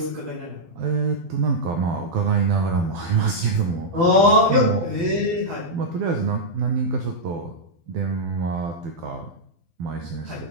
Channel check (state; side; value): late; left; 12 ms